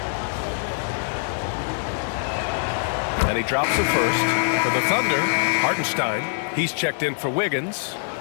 And he drops the first. For the Thunder, Hartenstein. He's checked in for Wiggins.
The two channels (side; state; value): right; silent; digital silence